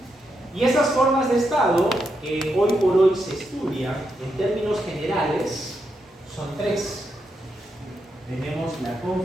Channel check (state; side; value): normal; both; correlation 0.83